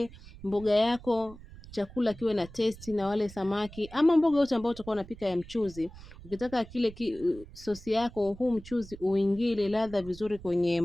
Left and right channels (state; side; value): noise; right; rumble, 18 dB below the sound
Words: mboga yako chakula kiwe na testi na wale samaki ama mboga yote ambayo utakuwa unapika ya mchuzi, ukitaka kile sosi yako huu mchuzi uingie ladha vizuri kwenye